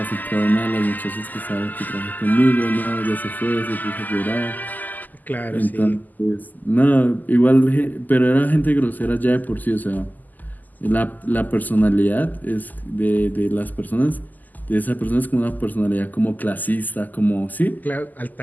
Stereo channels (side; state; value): right; late; 0.083 ms